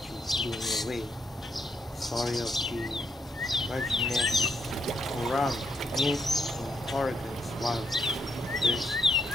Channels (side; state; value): both; normal; correlation 0.77